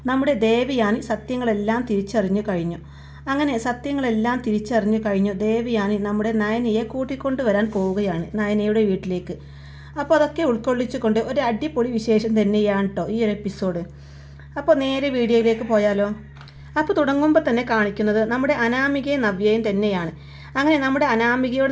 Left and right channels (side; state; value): both; identical; correlation 1.00